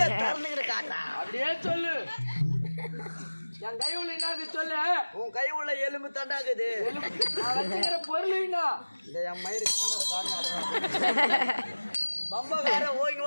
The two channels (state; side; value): inverted; both; correlation -1.00